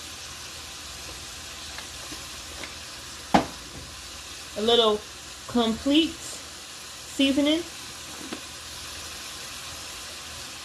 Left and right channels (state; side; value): identical; both; correlation 1.00